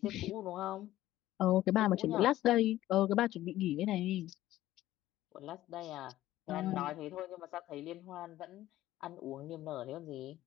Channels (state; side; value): quieter; right; 14.7 dB